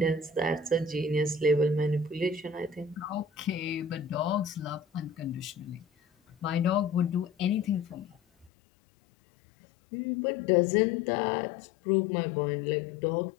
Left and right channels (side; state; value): right; drops out; at 8.5 s